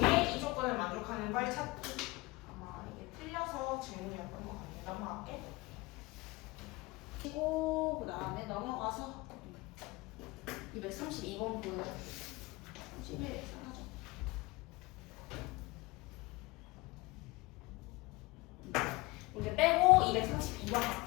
이 조건을 만족하는 걸 찾기. 아마 이게 틀려서 질문이었던 것 같아. 넘어갈게. 그리고 그 다음에 넘어가서 232번 보여. 11 사라져. 문제 빼고 232번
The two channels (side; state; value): right; quieter; 22.7 dB